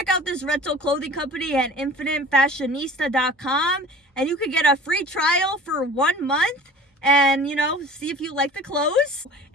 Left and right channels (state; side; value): normal; both; correlation 0.42